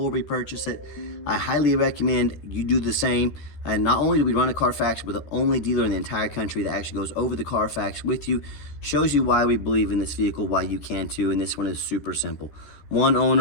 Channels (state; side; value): late; right; 13 ms